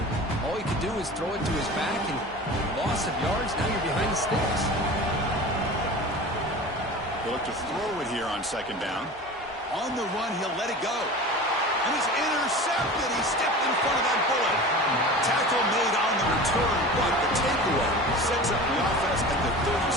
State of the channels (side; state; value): both; normal; correlation 0.35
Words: All you can do is throw it to his back, and loss of yards, now you're behind the sticks. He'll look to throw it here on second down. On the run, he'll let it go. And he's intercepted. He stepped in front of that bullet. Tackle made on the return, but the takeaway sets up the offense at the